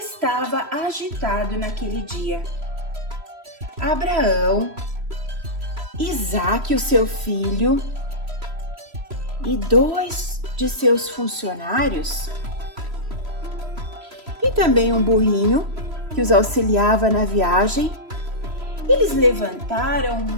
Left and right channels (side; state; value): left; late; 3.0 ms